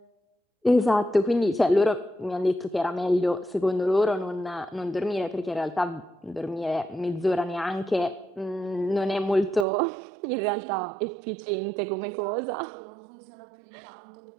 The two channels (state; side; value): drops out; left; at 9.7 s